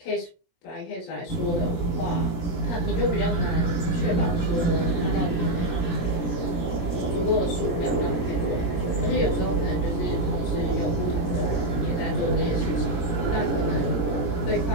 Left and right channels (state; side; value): late; right; 17 ms